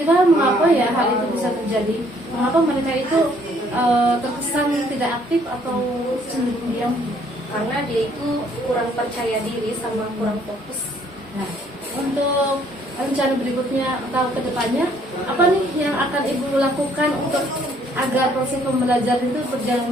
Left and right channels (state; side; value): normal; both; correlation 0.63